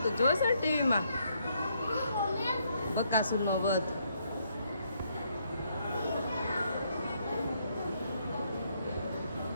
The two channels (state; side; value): inverted; both; correlation -0.73